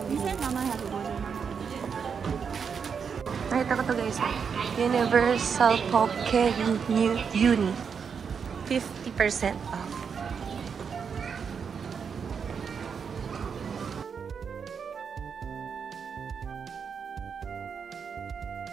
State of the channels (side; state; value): left; quieter; 6.5 dB